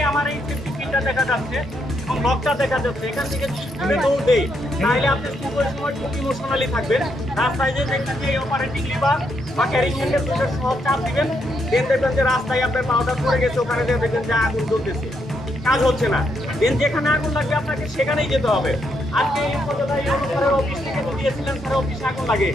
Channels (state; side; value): normal; both; correlation 0.78